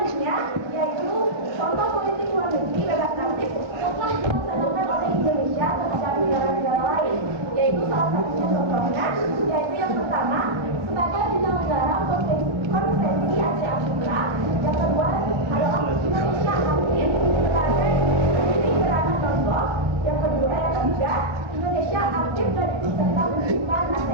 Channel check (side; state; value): left; late; 1.6 ms